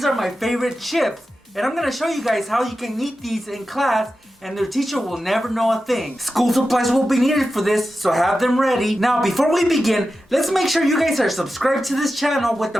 are my favorite chips, and I'm gonna show you guys how you can eat these in class and their teacher will never know a thing. School supplies will be needed for this, so have them ready. Now, before we begin, let's make sure you guys are subscribed to this channel with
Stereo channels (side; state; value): both; normal; correlation 0.92